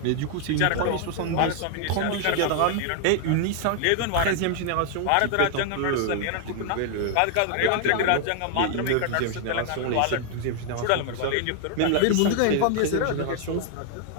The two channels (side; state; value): both; different; correlation 0.00